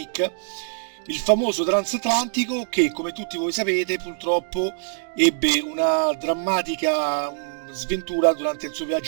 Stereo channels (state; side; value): silent; left; digital silence